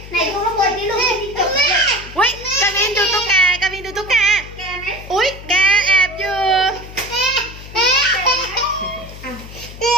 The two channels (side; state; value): left; noise; hum, 15 dB below the sound